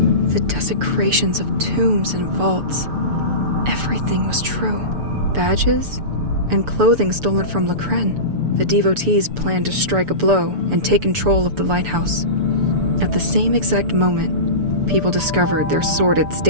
The desecrations of tombs and vaults. Everything was true. Badges and clothing stolen from Lacren. The devotees planned to strike a blow and take control of the lighthouse. At the same exact moment, people discovered their sordid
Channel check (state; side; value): late; left; 6.9 ms